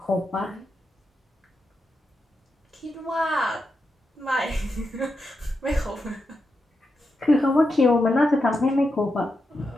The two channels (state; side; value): normal; both; correlation 0.87